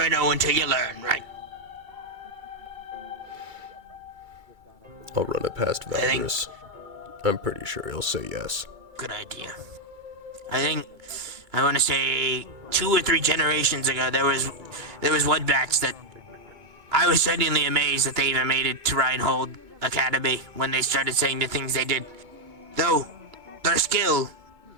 know until you learn, right? I'll run it past Valdris. I'm pretty sure he'll say yes. Good idea. I want to say 2 or 3 generations ago, there was one batch that I was genuinely amazed that they even made it to Reinhold Academy when they started saying the things they did. Though, their skill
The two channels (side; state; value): left; late; 2.3 ms